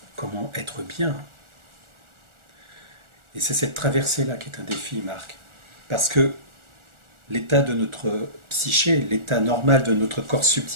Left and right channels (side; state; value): left; late; 1.4 ms